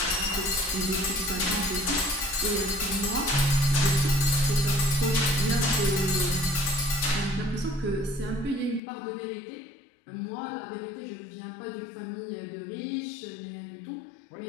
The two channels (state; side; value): drops out; right; at 8.8 s